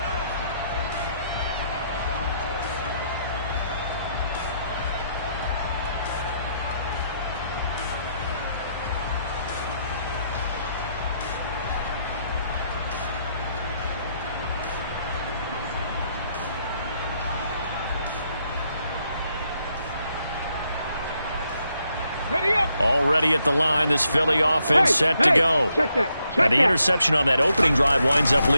Already at the line, this Philly offense set to go. And the interception on that opening drive winds up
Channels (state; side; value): inverted; both; correlation -0.77